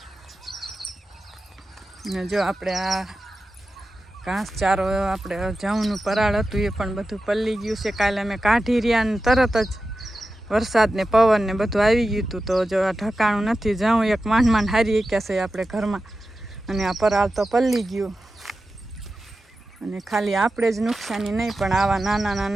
ને જો આપણે આ ઘાસચારો આપણે જવનું પરાળ હતું એ પણ બધું પલ્લી ગયું છે. કાલે અમે કાઢી રહ્યા ને તરત જ વરસાદ ને પવન ને બધું આવી ગયું હતું. તો જો આ ઠકાણું નથી, જવું એક માંડ હારી એક્યા છે આપણે ઘરમાં અને આ પરાળ તો પલ્લી ગયું. અને ખાલી આપણે જ નુકસાની નહીં પણ આવા નાના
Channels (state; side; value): normal; both; correlation 0.93